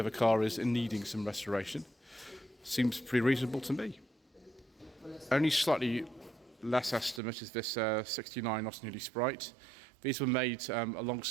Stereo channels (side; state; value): left; drops out; at 7.2 s